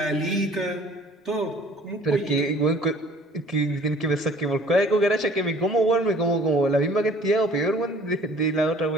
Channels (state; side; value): normal; both; correlation 0.52